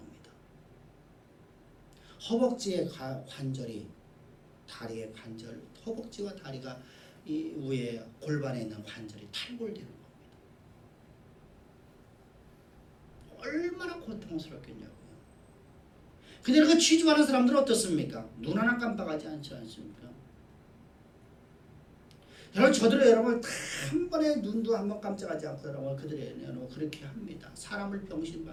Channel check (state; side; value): identical; both; correlation 1.00